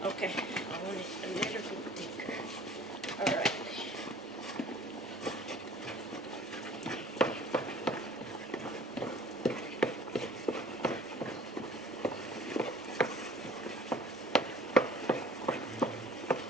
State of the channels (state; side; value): normal; both; correlation 0.50